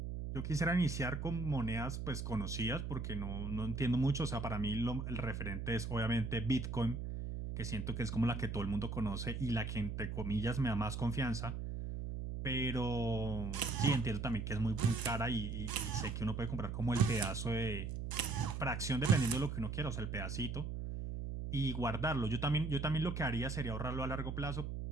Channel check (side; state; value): right; noise; hum, 4 dB below the sound